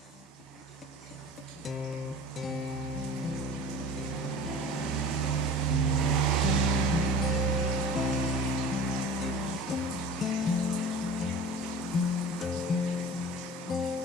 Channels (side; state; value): both; normal; correlation 0.39